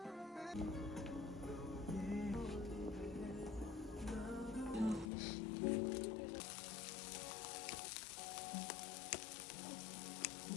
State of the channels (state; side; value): drops out; right; at 5.1 s